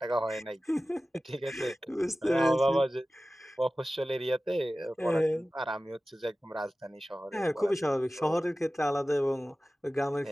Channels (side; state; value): both; normal; correlation 0.96